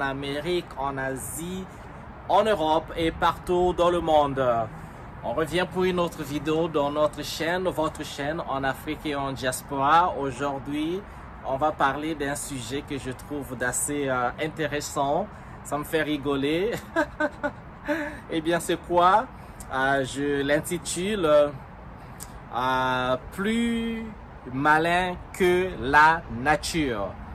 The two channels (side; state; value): both; identical; correlation 1.00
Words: Amérique, en Asie, en Europe et partout dans le monde. On revient pour une autre vidéo dans notre chaîne, votre chaîne en Afrique et en diaspora. Aujourd'hui, on va parler d'un sujet que je trouve d'assez intéressant. Ça me fait rigoler. Eh bien, c'est quoi? Je l'intitule plus malin que la nature.